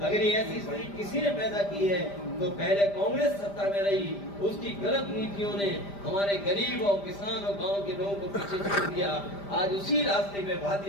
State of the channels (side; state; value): right; late; 5.0 ms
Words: ये ऐसी स्थिति किसी ने पैदा की है तो पहले कांग्रेस सत्ता में रही, उसकी गलत नीतियों ने हमारे गरीब और किसान और गांव के लोगों को पीछे छोड़ दिया। आज उसी रास्ते पे